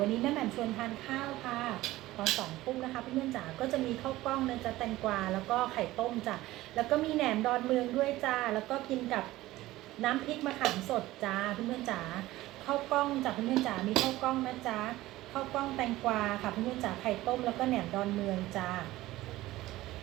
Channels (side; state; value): left; quieter; 17.0 dB